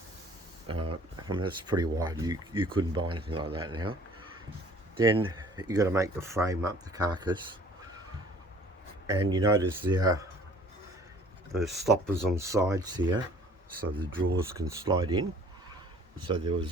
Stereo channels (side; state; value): both; normal; correlation 0.52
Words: I mean, that's pretty wide. You couldn't buy anything like that now. Then you got to make the frame up, the carcass, and you notice the stoppers on the sides here, so the drawers can slide in. So there